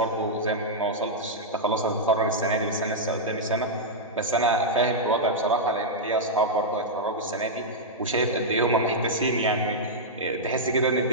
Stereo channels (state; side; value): normal; both; correlation -0.07